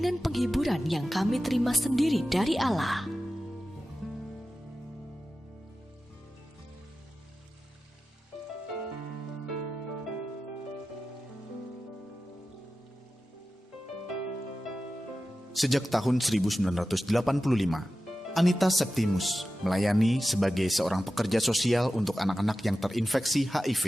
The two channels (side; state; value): both; normal; correlation 0.94